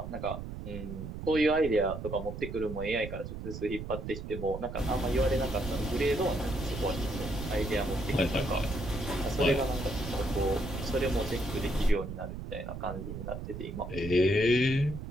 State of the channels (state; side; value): noise; right; rumble, 8 dB below the sound